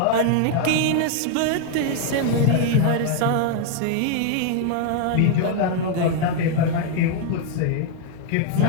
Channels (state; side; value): different; both; correlation 0.00